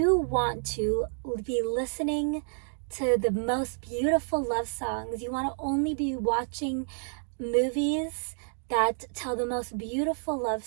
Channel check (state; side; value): silent; left; digital silence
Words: want to be listening to the most beautiful love songs. You want to only be watching movies that tell the most beautiful love